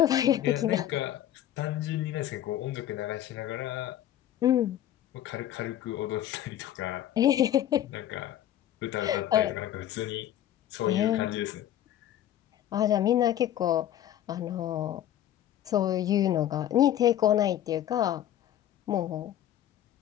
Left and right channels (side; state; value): right; quieter; 11.8 dB